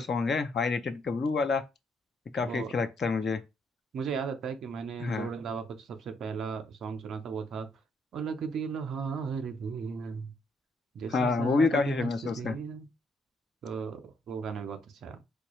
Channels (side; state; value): both; normal; correlation 0.72